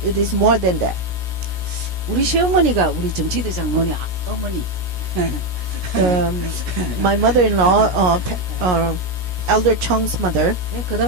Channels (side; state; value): left; late; 17 ms